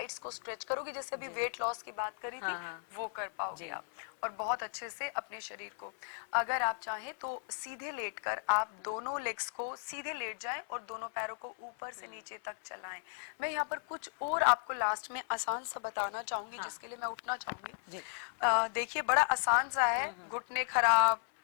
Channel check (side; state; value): right; silent; 54 dB below the other